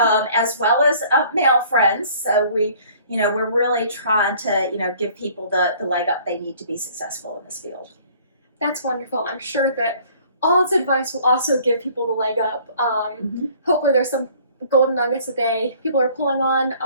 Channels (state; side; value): inverted; both; correlation -0.55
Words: as well as male friends. So we're really trying to, give people the leg up they need to be successful in this field. That's wonderful. I'm sure that all its advice will also give people the leg up. Hopefully there's some golden nuggets that people are pulling on.